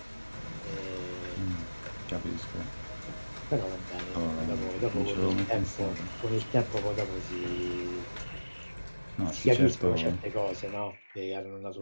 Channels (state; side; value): inverted; both; correlation -1.00